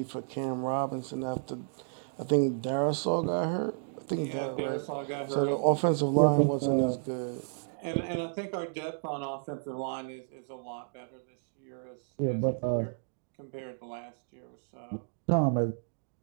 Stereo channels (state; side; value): silent; left; digital silence